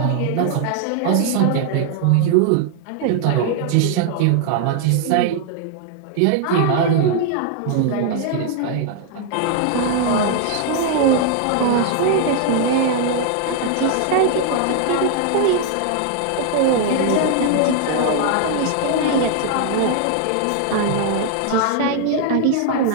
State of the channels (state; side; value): different; both; correlation 0.00